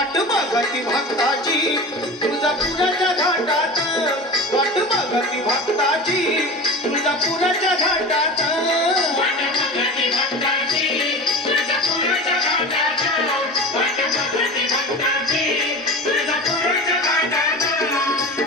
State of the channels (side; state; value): both; normal; correlation 0.32